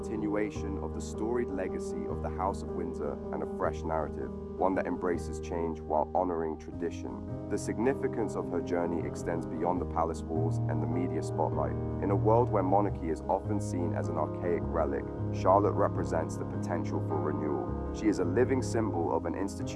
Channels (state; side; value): identical; both; correlation 1.00